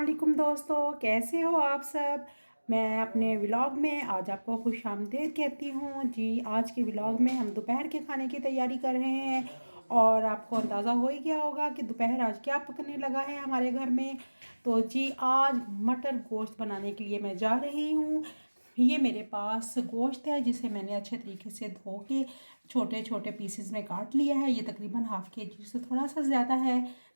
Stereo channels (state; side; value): inverted; both; correlation -1.00